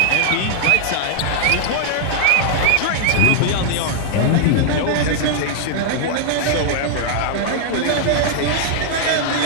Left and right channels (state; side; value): different; both; correlation 0.00